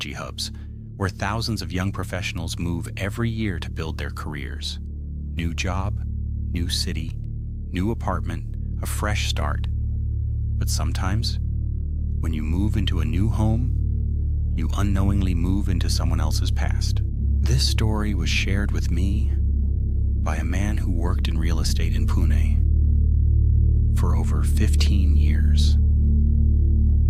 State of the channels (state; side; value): identical; both; correlation 1.00